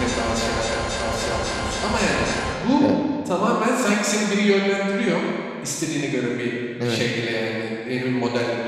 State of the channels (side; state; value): both; identical; correlation 1.00